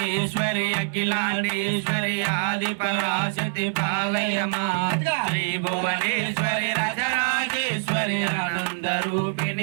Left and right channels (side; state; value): left; silent; 62 dB below the other